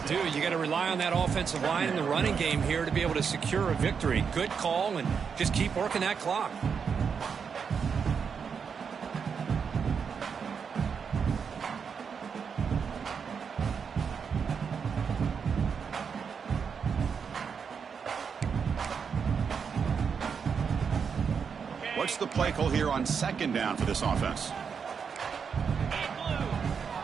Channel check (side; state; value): left; quieter; 6.3 dB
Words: do. You got to rely on that offensive line and the running game here to be able to secure a victory. Good call, and just keep working that clock. What's the play call here on second down for this offense?